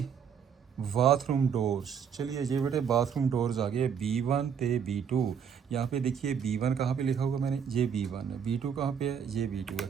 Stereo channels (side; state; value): left; quieter; 7.5 dB